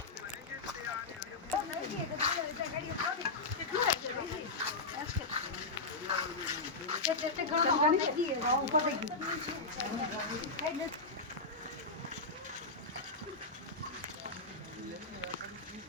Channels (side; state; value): right; quieter; 3.6 dB